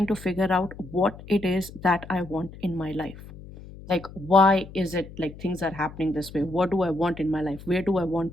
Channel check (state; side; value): noise; left; hum, 16 dB below the sound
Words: to figure out what it is that I want in my life. Like, why is it like things are happening this way? What do I want in my life? Where do I want